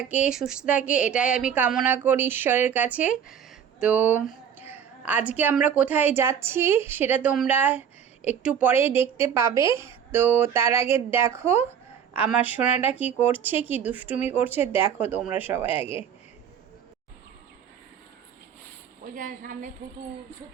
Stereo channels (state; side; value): quieter; left; 8.2 dB